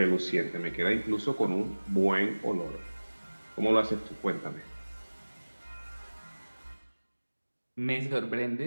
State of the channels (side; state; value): both; inverted; correlation -1.00